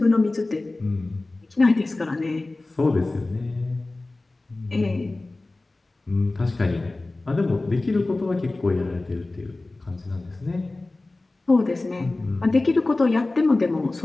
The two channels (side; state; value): right; quieter; 3.0 dB